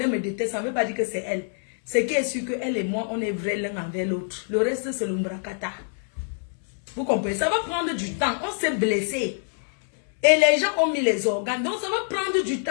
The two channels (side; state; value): right; silent; digital silence